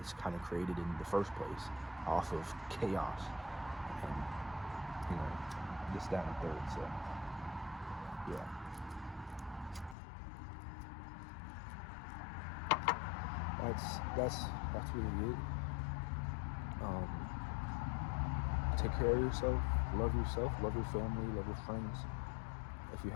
kind of created in the first place, off of chaos and, you know, this, that, and third. So yeah, that's really it. Take care of yourself, love your family, love your friends. If you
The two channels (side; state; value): right; drops out; at 10.0 s